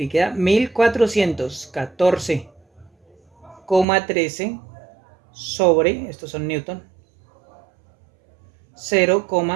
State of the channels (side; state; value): left; drops out; at 3.9 s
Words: y queda 1414,13 sobre, estos son newton,